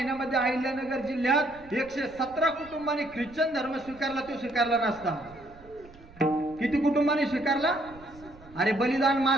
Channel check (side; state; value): right; noise; rumble, 22 dB below the sound